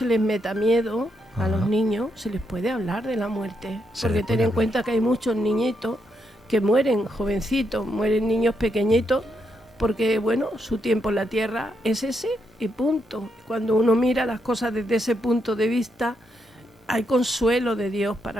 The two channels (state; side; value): normal; both; correlation 0.80